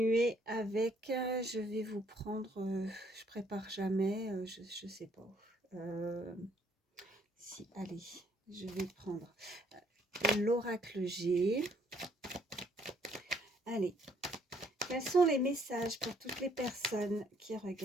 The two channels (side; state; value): both; normal; correlation 0.65